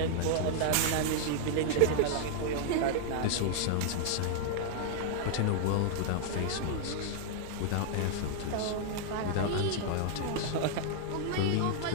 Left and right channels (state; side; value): different; both; correlation -0.01